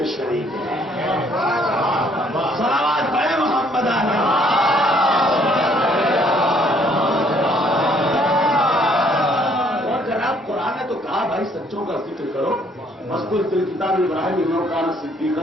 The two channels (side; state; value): both; normal; correlation 0.64